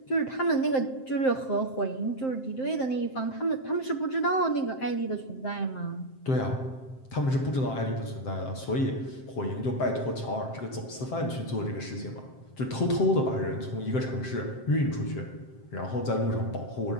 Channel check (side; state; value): right; late; 7.6 ms